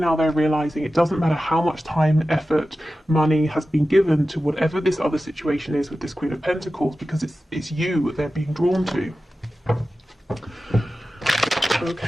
they're realizing it doesn't matter how much time, effort, money has been given to whatever this other situation is with this Queen of Pentacles, because it's you they're being drawn to.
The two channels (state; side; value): normal; both; correlation 0.94